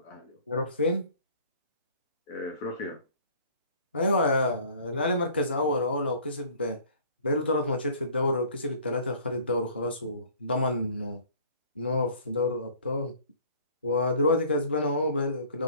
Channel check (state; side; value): inverted; both; correlation -0.51